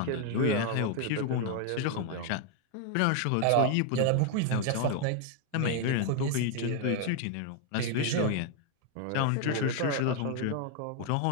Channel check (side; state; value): both; different; correlation 0.01